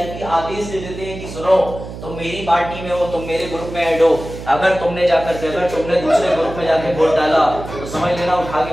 आदेश दे देते हैं कि सुनो तुम मेरी पार्टी में हो, तुम मेरे ग्रुप में ऐड हो, अगर तुमने दूसरे ग्रुप में जाकर वोट डाला तो समझ लेना उठा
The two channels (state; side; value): noise; right; hum, 11 dB below the sound